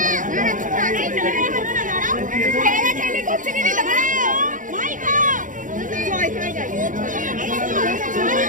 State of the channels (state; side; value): late; left; 0.38 ms